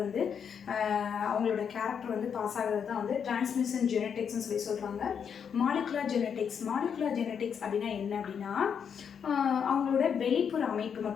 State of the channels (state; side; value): quieter; right; 7.3 dB